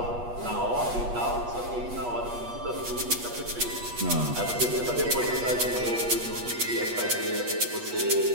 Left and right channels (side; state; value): left; late; 8.3 ms